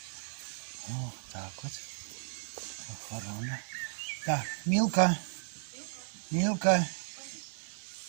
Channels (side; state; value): left; silent; 55 dB below the other